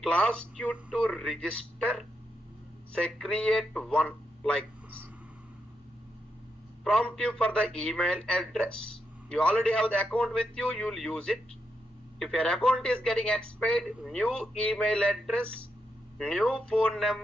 will ask you to register. Say create one like this. Prompt you for the email address. You already have the account with you, you will use it. If your account is getting expired, new email address, new phone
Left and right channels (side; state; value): both; normal; correlation 0.83